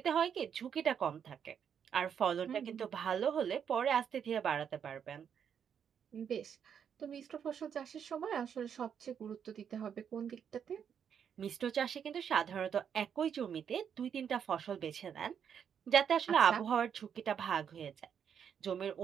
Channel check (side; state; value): left; quieter; 7.9 dB